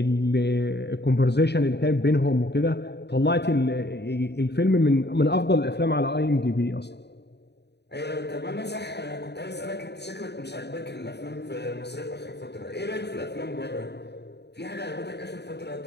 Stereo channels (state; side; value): late; right; 0.49 ms